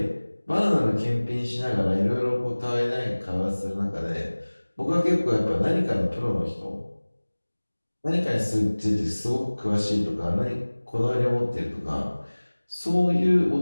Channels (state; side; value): inverted; both; correlation -1.00